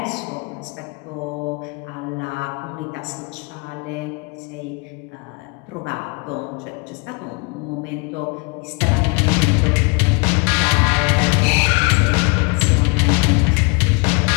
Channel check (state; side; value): quieter; right; 30.9 dB